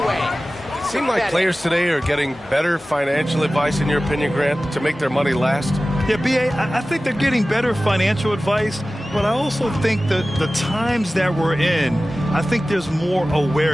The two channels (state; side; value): normal; both; correlation 0.96